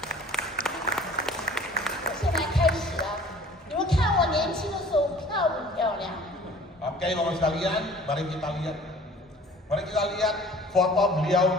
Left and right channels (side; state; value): both; normal; correlation 0.49